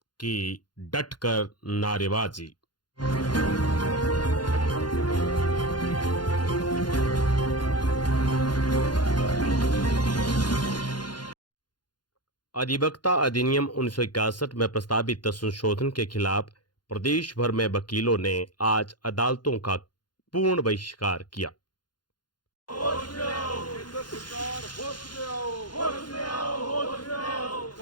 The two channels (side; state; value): right; late; 0.71 ms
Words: की डटकर नारेबाजी। अधिवक्ता अधिनियम 1961 में प्रस्तावित संशोधन के खिलाफ प्रदेश भर में वकीलों ने आज अदालतों का पूर्ण बहिष्कार किया। होश में आओ, केंद्र सरकार होश में आओ, होश में आओ, होश में आओ,